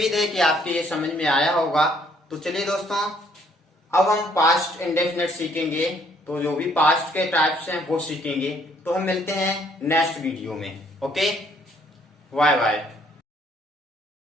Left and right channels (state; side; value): normal; both; correlation 0.65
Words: है कि आपके ये समझ में आया होगा। तो चलिए दोस्तों, अब हम पास्ट इंडेफिनिट सीखेंगे। तो जो भी पास्ट के टाइप्स हैं वो सीखेंगे। तो हम मिलते हैं नेक्स्ट वीडियो में। Okay, bye bye.